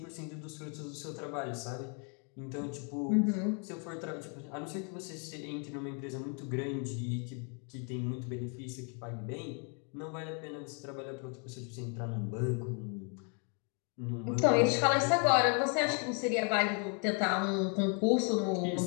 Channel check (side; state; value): right; quieter; 38.4 dB